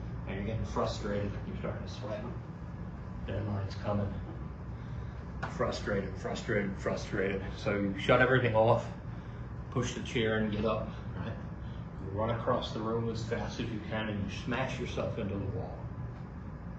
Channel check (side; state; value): both; identical; correlation 1.00